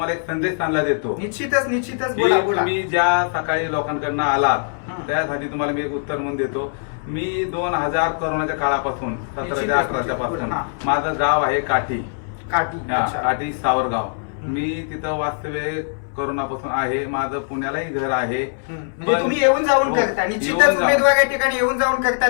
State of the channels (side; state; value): right; silent; 61 dB below the other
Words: एक संदेश चांगला देतो। निश्चितच बोला बोला। तुम्ही ज्या सकाळी लोकांकडनं आलात त्यासाठी तुम्हाला मी एक उत्तर म्हणून देतो। मी 2000 कोरोनाच्या काळापासून 17 ते 18 पासून माझं गाव आहे काठी सावरगाव। मी तिथं वास्तव्य कोरोनापासून आहे। माझं पुण्यालाही घर आहे। म्हणजे तुम्ही येऊन जाऊन करता? निश्चितच उमेदवार या ठिकाणी येऊन जाऊन